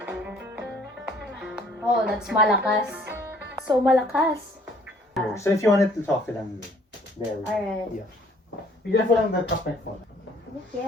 Oh, that's malakas. So malakas. So if you want it to talk to them, there we go. Alright. Yeah. Be careful lang the top phone.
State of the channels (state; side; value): normal; both; correlation 0.59